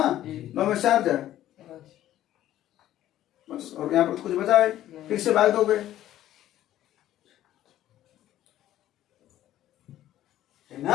9 में 4 जा बस, और यहाँ पर कुछ बचा है, फिर से भाग दोगे, है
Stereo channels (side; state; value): right; quieter; 13.0 dB